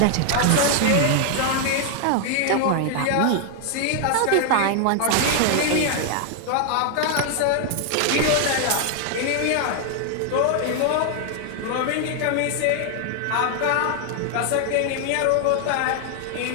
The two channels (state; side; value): different; both; correlation 0.00